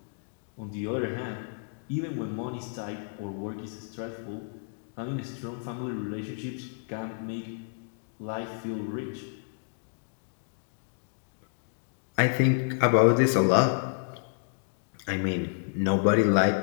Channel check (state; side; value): silent; right; digital silence